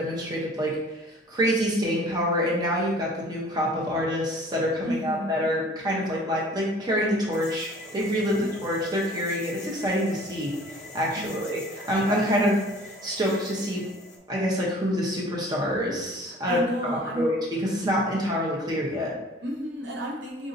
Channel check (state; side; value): normal; both; correlation 0.49